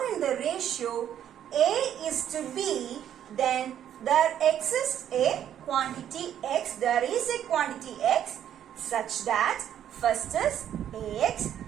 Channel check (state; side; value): quieter; left; 10.3 dB